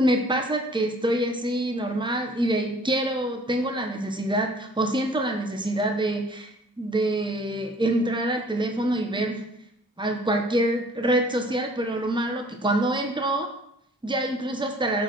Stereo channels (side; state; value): both; normal; correlation 0.53